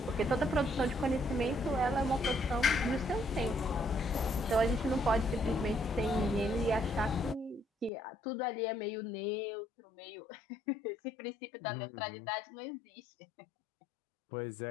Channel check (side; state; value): right; drops out; at 7.9 s